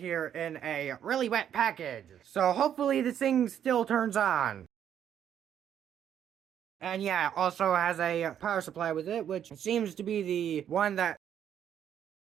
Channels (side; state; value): left; quieter; 9.5 dB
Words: in a really wet package. So hopefully this thing still turns on. And yeah, also has a power supply with it, which seems to be the one that...